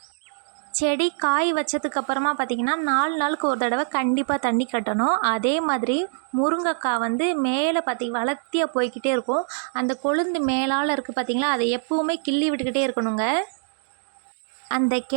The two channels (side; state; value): left; silent; digital silence